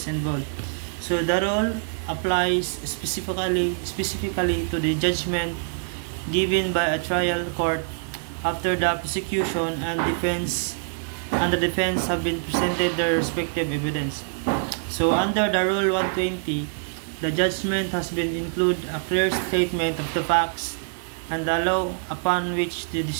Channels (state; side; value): silent; left; digital silence